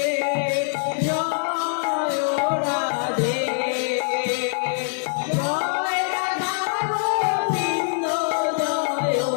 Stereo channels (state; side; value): silent; right; digital silence